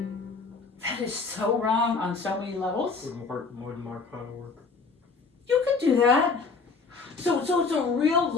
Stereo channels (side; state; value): right; quieter; 4.5 dB